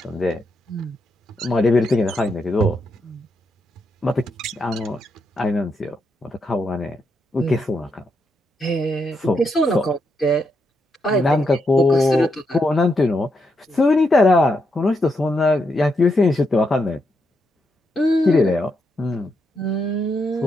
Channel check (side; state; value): both; normal; correlation 0.81